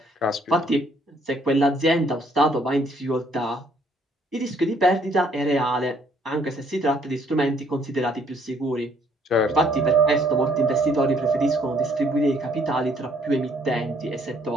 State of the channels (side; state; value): both; normal; correlation 0.65